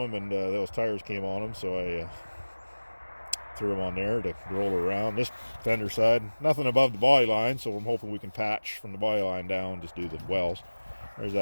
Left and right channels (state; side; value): inverted; both; correlation -1.00